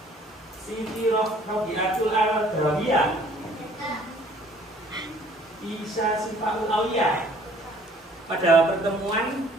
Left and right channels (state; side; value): normal; both; correlation 0.56